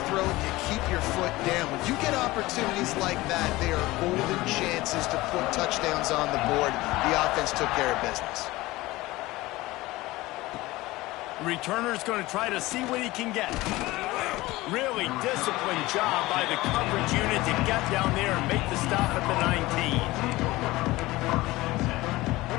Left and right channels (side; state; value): right; quieter; 19.3 dB